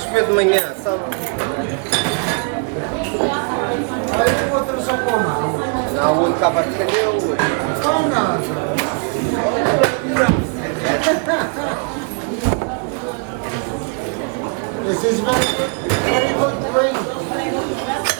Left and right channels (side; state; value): left; quieter; 39.3 dB